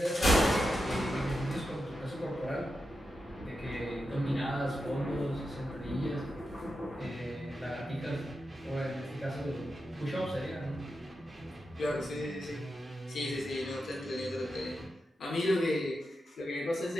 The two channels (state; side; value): normal; both; correlation 0.88